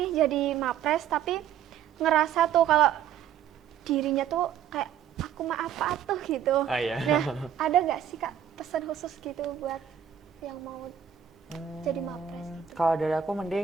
jadi Mapres tapi ngerasa tuh kalau dirinya tuh kayak aku mah apa tuh gitu. Iya. Nah, ada nggak sih kak pesan khusus gitu buat yang mau jadi Mapres? Kalau dari aku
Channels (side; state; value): left; quieter; 9.2 dB